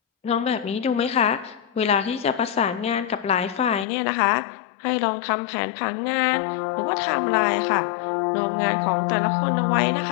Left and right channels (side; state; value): right; drops out; at 3.9 s